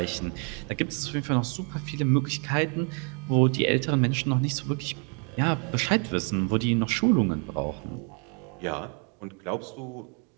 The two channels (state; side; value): quieter; left; 38.6 dB